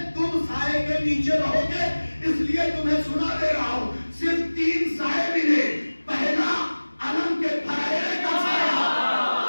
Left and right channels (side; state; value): both; inverted; correlation -1.00